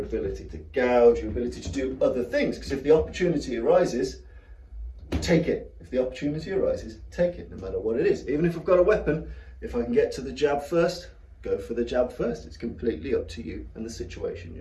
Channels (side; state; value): both; identical; correlation 1.00